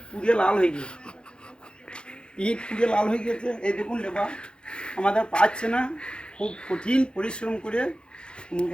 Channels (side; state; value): right; late; 0.052 ms